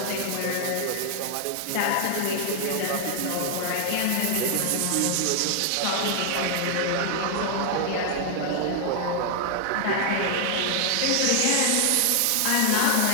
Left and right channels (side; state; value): both; different; correlation 0.00